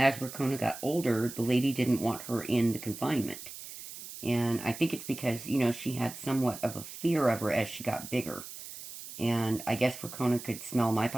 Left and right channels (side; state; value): right; noise; hiss, 12 dB below the sound